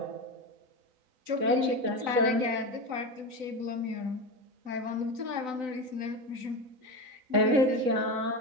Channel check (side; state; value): left; late; 3.9 ms